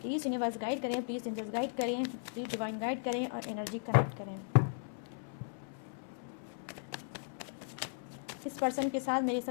प्लीज़ यूनिवर्स गाइड करें, प्लीज़ एंजल्स गाइड करें, प्लीज़ डिवाइन गाइड करें और एनर्जी कनेक्ट करें। इस पर्सन के साथ मेरे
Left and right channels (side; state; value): right; silent; 53 dB below the other